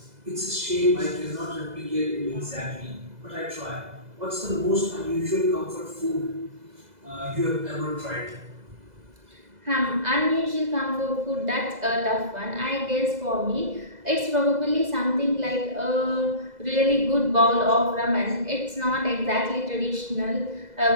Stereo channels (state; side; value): late; left; 2.0 ms